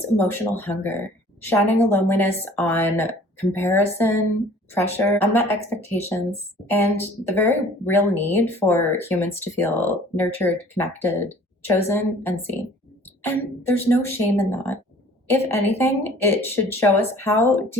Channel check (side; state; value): both; normal; correlation 0.51